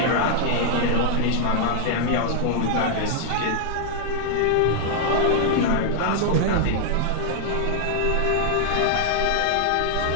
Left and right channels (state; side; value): different; both; correlation -0.01